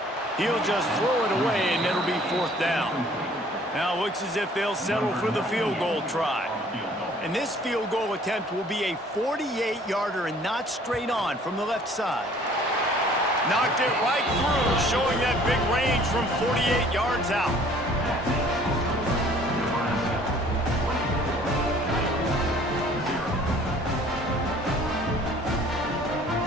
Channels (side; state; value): both; normal; correlation 0.55